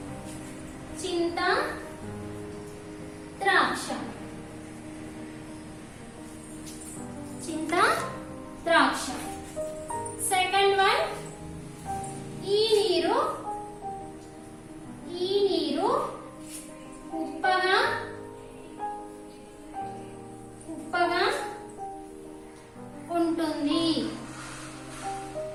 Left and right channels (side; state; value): both; identical; correlation 1.00